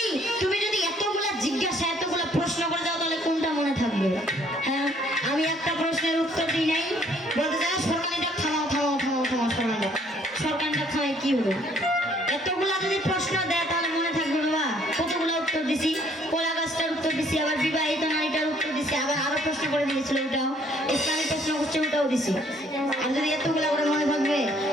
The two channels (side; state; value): both; normal; correlation 0.63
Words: যদি এতগুলা জিজ্ঞাসা এতগুলা প্রশ্ন করে যাও তাহলে কোনটা মনে থাকবে? হ্যাঁ আমি একটা প্রশ্নের উত্তর দিই নাই, বলতে চাই সরকারিটা থামাও থামাও থামাও থামাও, সরকারিটা থামাই কি হলো? এতগুলা যদি প্রশ্ন দেয় তাহলে মনে থাকবে বাবা? কতগুলো উত্তর দিছি, কলা গাছটার উত্তর দিছি, আবার বিবাহিত নারীটার উত্তর দিছি, আবার আরো প্রশ্ন করে দিয়েছিল ওটাও, ইসলামিক প্রশ্ন করছে ওটাও দিছি। আর যদি এতগুলা করে মনে থাকবে,